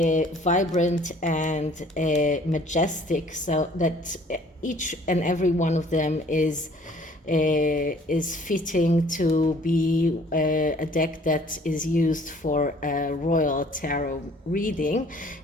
vibrant and majestic, so that each and every one of them is fitting to be a deck that is used for a royal tarot reading.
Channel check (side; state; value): both; normal; correlation 0.56